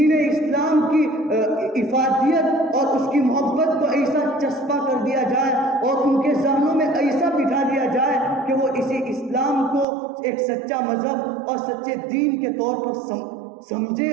اسلام کی افادیت اور اس کی محبت کو ایسا چسپا کر دیا جائے اور ان کے ذہنوں میں ایسا بٹھا دیا جائے کہ وہ اسی اسلام کو ایک سچا مذہب اور سچے دین کے طور پر سمجھے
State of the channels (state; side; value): drops out; left; at 9.9 s